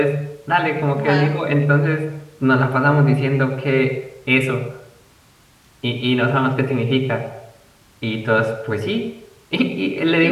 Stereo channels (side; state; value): both; identical; correlation 1.00